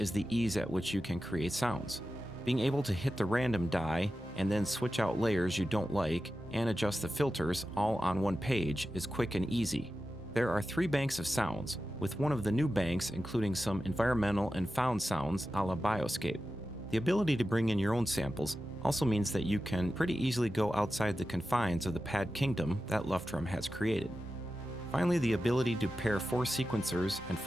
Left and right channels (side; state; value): both; normal; correlation 0.92